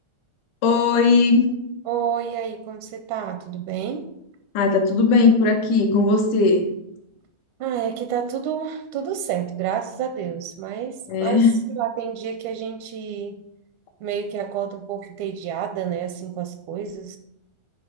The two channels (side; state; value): right; late; 1.4 ms